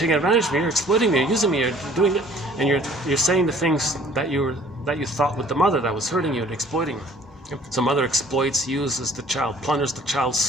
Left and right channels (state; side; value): normal; both; correlation 0.55